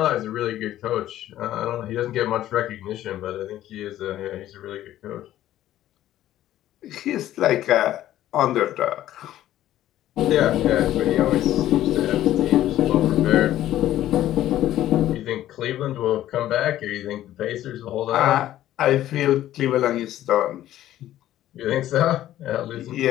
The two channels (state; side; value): quieter; right; 13.2 dB